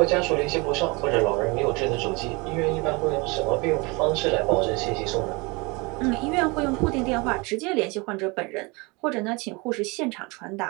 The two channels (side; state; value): left; quieter; 27.2 dB